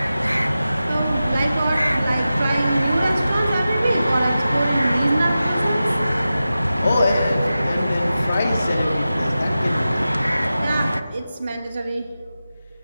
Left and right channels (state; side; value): inverted; both; correlation -0.94